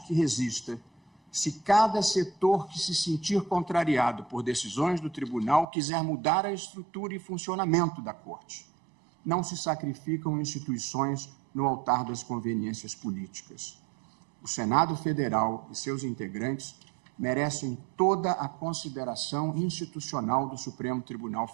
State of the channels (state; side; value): drops out; left; at 5.7 s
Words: resista se cada setor que se sentir contrariado por decisões do tribunal quiser mudar a estrutura e funcionamento da Corte. Não se sacrificam instituições no altar das conveniências políticas. O Senado Federal e seus integrantes merecem toda a consideração institucional do Supremo Tribunal